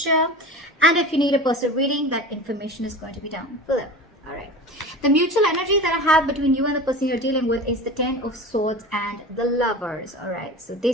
And if you need a personal reading, that information is going to be down below. All right. The mutual energy that I have between you and the person you're dealing with is the Ten of Swords and the Lovers. All right. So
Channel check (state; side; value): normal; both; correlation 0.33